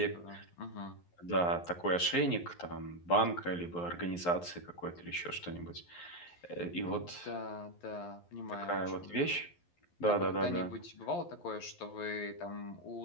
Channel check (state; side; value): late; right; 11 ms